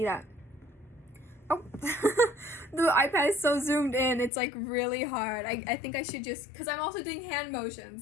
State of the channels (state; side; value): drops out; right; at 4.3 s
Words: that. Oh, the iPad is so zoomed in, it's like really hard. I think I should just, because I'm also doing hand